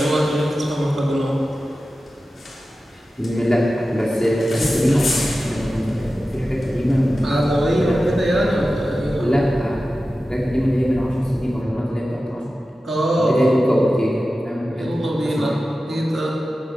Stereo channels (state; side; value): normal; both; correlation 0.94